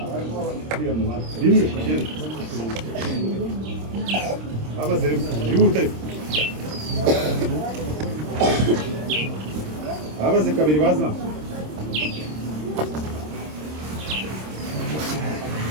rimwe abaze rimwe yihuta abaze kabiri baza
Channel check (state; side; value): late; left; 26 ms